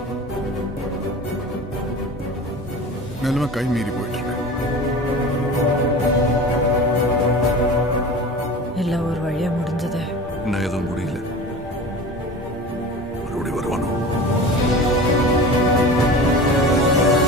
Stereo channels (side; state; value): both; normal; correlation 0.35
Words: நிலைமை கை மீறி போயிட்டு இருக்கு. எல்லாம் ஒரு வழியா முடிஞ்சது. இன்னும் எதுவும் முடியல. மறுபடியும் வருவானோ?